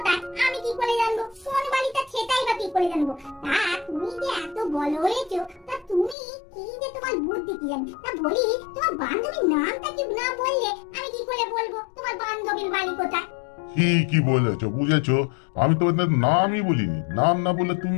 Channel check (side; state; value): right; drops out; at 6.2 s